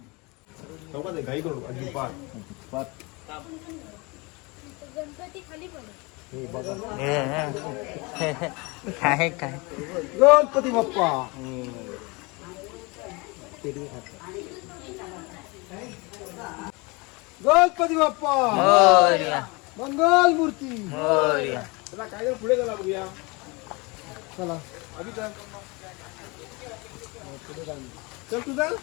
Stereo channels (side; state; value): right; quieter; 27.1 dB